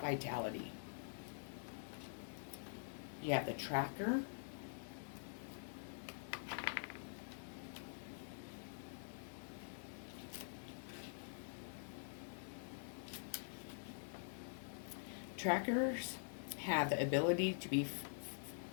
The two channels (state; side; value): silent; right; digital silence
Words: You have the tracker. Trackers have the ability to be